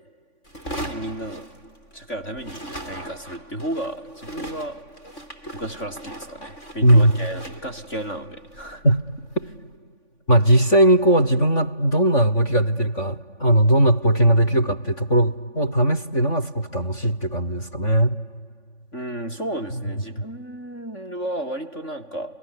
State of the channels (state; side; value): late; right; 3.5 ms